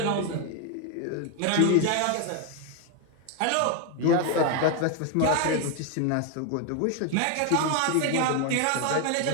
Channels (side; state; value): both; different; correlation 0.01